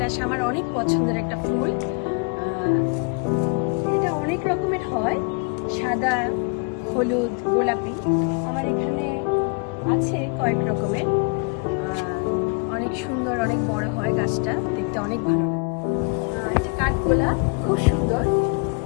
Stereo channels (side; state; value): right; quieter; 34.7 dB